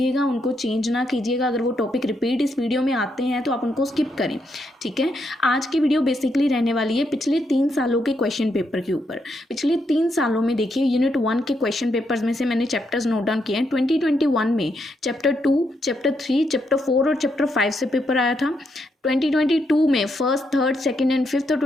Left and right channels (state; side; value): normal; both; correlation 0.79